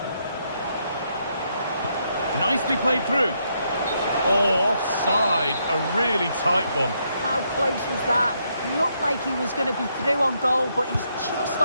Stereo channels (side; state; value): both; inverted; correlation -0.76